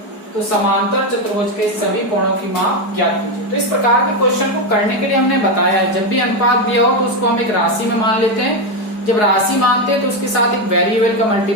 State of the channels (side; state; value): right; late; 4.8 ms